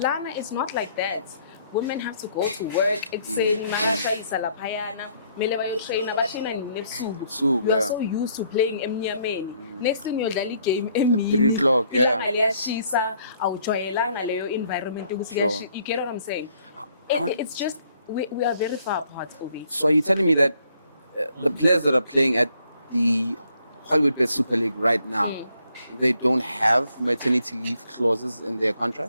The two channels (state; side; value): inverted; both; correlation -0.67